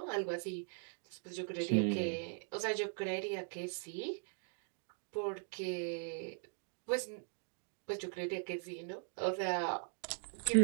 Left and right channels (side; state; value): left; silent; 51 dB below the other